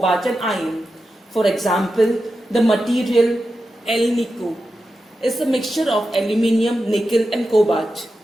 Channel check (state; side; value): normal; both; correlation 0.90